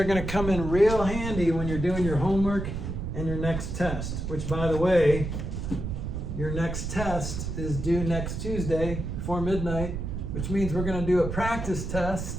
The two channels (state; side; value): noise; right; rumble, 4 dB below the sound